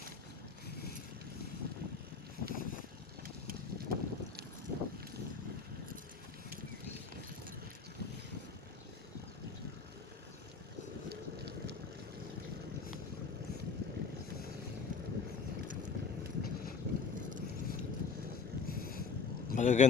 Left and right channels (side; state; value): right; quieter; 5.3 dB